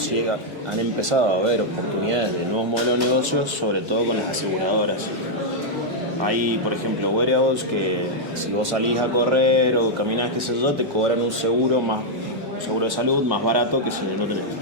han empezado a haber oportunidades de nuevos modelos de negocios, sobre todo con las aseguradoras. Hay, por ejemplo, wearables que si vos salís a correr o caminás, qué sé yo, te cobran un seguro de salud más barato que si no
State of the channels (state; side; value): normal; both; correlation -0.04